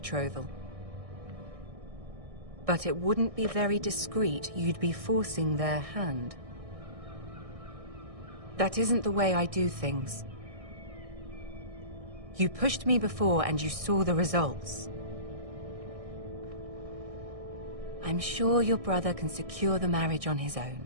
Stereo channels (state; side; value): late; left; 1.6 ms